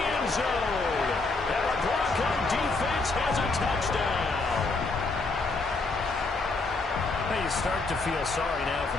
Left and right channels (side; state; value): right; quieter; 3.6 dB